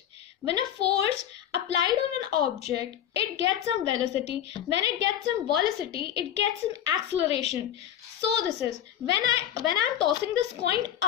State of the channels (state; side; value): quieter; right; 10.7 dB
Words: When a force applied on an object, it gets some velocity. When it gets some velocity, it gets some acceleration. So this is when I'm tossing this coin